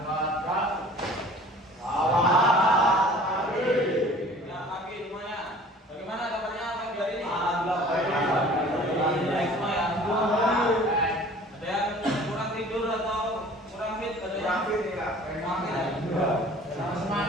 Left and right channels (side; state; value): both; normal; correlation 0.47